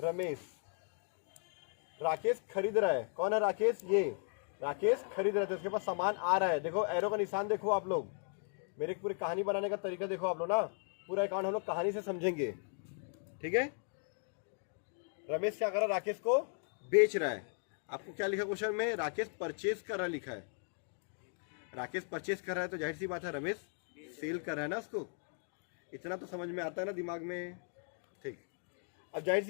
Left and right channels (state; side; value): silent; right; 53 dB below the other